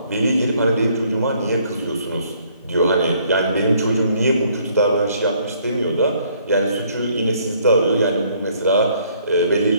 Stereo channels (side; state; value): both; inverted; correlation -0.64